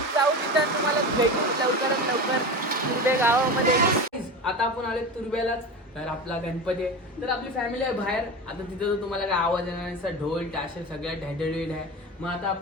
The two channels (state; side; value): normal; both; correlation 0.27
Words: जाऊ तिथं तुम्हाला भेटू लवकरात लवकर तुर्बे गावामध्ये. आता आपण आले तुर्ब्यालाच. तर आपला गणपती आहे, तर आपली फॅमिली आहे बाहेर. आता तिथं तर तुम्हाला काय आवाज येणार नाही, ढोल टाशे सगळ्या ढॅढळीड आहे. मग आता